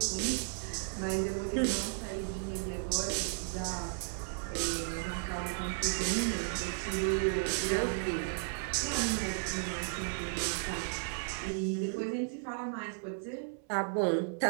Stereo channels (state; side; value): silent; left; 55 dB below the other